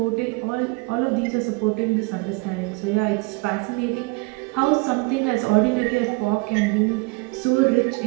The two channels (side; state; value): left; quieter; 27.9 dB